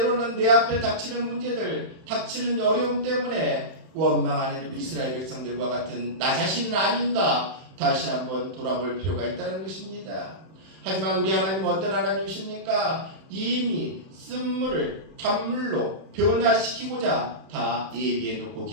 내 앞에 닥치는 문제들, 닥치는 어려움 때문에 원망하는 이스라엘 백성들과 같은 나 자신은 아닌가 다시 한번 돌아볼 필요가 있다는 것입니다. 하지만 우리 하나님은 어떤 하나님이십니까? 이미 쓴물을 단물로 변화시키고자 다 예비해 놓고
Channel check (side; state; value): left; late; 31 ms